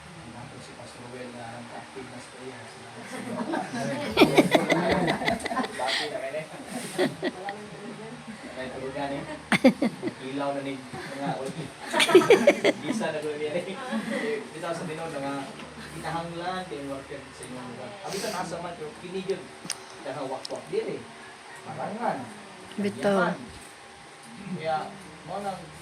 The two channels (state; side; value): identical; both; correlation 1.00